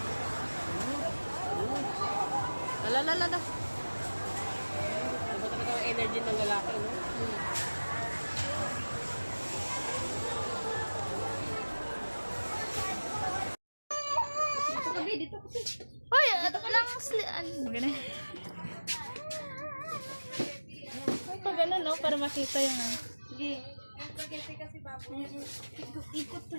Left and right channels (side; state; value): both; inverted; correlation -1.00